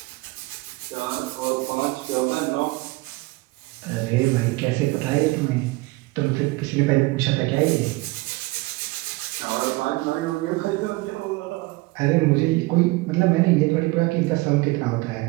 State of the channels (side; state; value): left; quieter; 22.5 dB